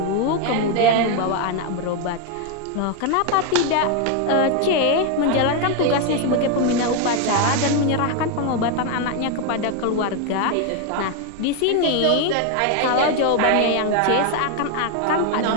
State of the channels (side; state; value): both; different; correlation 0.01